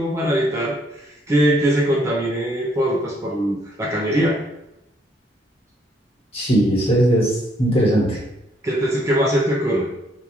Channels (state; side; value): normal; both; correlation 0.69